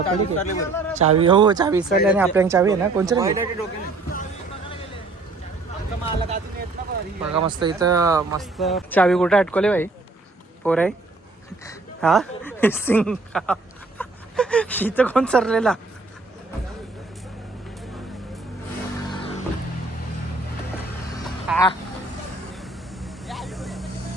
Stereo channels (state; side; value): quieter; left; 3.4 dB